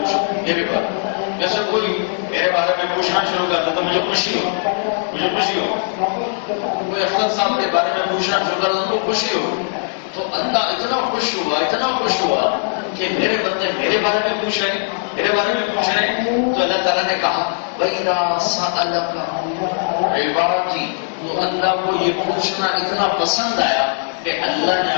میرے بارے میں، جیسے کوئی میرے بارے میں پوچھنا شروع کرتا تو مجھے خوشی ہو، مجھے خوشی ہو، کوئی افسر صاحب کے بارے میں پوچھنا شروع کرتا ان کو خوشی ہو، تو اللہ اتنا خوش ہوا، اتنا خوش ہوا کہ میرے بندے میرے بارے میں پوچھ رہے ہیں، میرے بارے میں پوچھ رہے ہیں، تو اللہ تعالیٰ نے کہا وَإِذَا سَأَلَكَ عِبَادِي، تو اللہ کو یہ پوچھنا اتنا پسند آیا کہ اللہ نے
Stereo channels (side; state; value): right; silent; digital silence